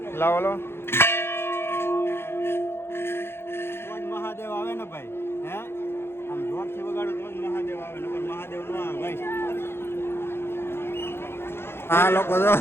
લાવો લો. મહાદેવ આવે ને ભાઈ. હે આમ જોરથી વગાડો તો જ મહાદેવ આવે ને મહાદેવ નો આવે ભાઈ. આ લોકો તો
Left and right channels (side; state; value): right; late; 0.11 ms